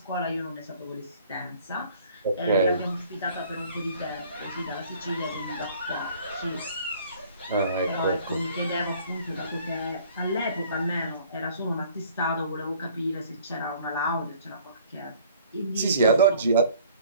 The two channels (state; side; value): inverted; both; correlation -0.54